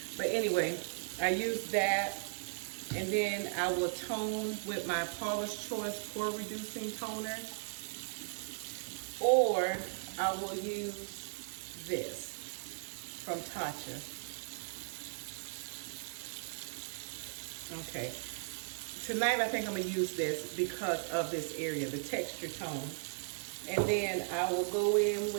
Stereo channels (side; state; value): left; silent; digital silence